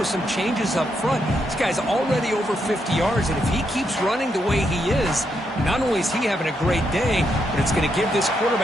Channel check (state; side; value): normal; both; correlation 0.80